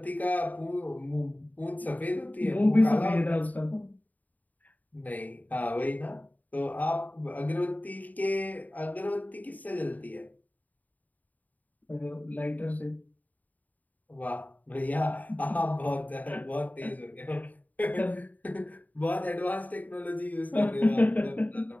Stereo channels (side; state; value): right; late; 0.078 ms